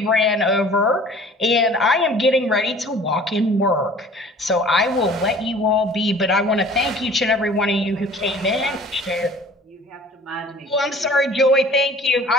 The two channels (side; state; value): both; normal; correlation 0.48